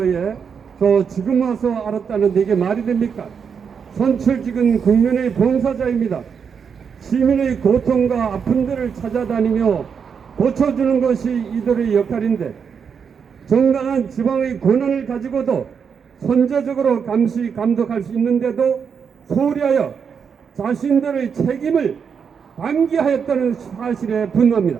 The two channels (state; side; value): quieter; left; 6.6 dB